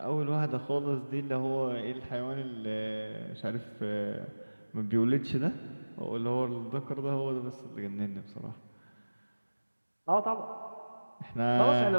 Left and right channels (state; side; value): inverted; both; correlation -1.00